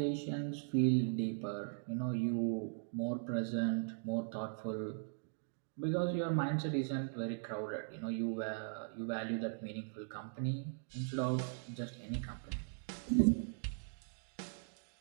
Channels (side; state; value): left; silent; digital silence